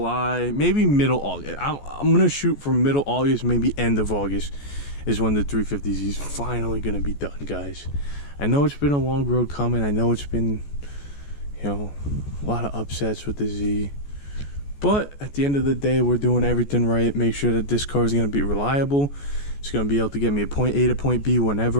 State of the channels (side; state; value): right; late; 14 ms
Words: maybe middle August. I'm gonna shoot for middle August, maybe end of August is when the 350Z is finally gonna be done, guys. I know it's been a long road coming. I know it's been, you know, a lot of upsets with the Z. But at the end of the day, we're doing everything right. Make sure that this car is going to be reliable. It's going to be able to get me a point A to point B